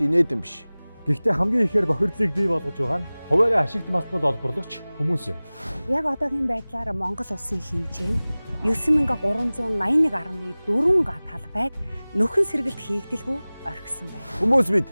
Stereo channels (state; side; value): inverted; both; correlation -0.99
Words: инээдэн биш. Гэхдээ хамгийн ихээр бохирдлыг бий болгож байгаа нь хуваарь ашигт маснууд олборлогч хүмүүс юм. Яг одоогийн байдлаар Монгол улсын хэмжээ нь 9381.4 га талбайг нөхөн сэргэлт хийгдэлгүй орхисон байна. Хүмүүс бид